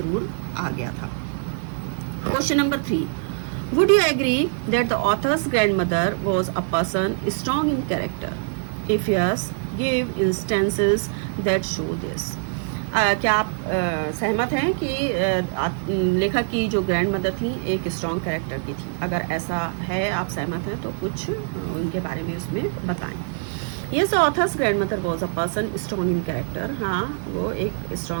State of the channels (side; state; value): left; silent; digital silence